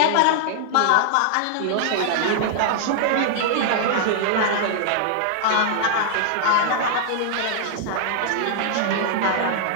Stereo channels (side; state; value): both; different; correlation -0.01